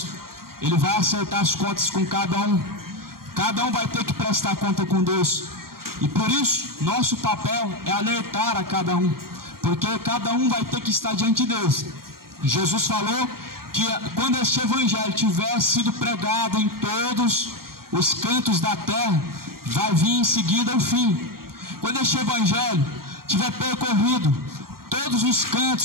Ele vai acertar as contas com cada um. Cada um vai ter que prestar conta com Deus. E por isso, nosso papel é alertar a cada um, porque cada um vai ter que estar diante de Deus. Jesus falou que quando este evangelho tiver sido pregado em todos os cantos da terra, vai vir em seguida o fim. Quando este evangelho tiver percorrido todos os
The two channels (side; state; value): left; late; 0.93 ms